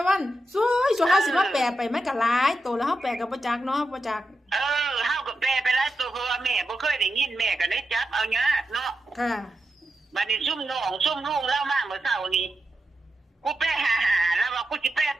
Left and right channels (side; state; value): both; normal; correlation 0.89